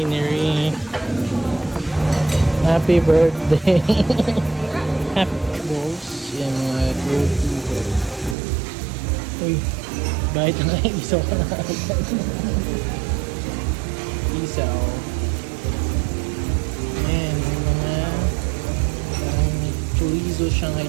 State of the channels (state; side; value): drops out; left; at 8.3 s